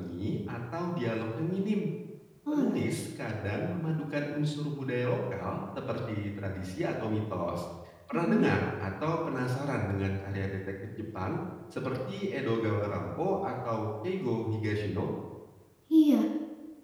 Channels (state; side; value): identical; both; correlation 1.00